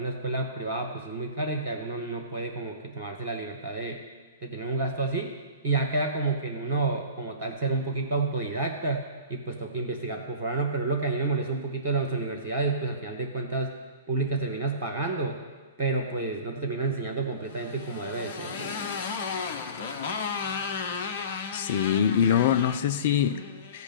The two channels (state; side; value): inverted; both; correlation -0.38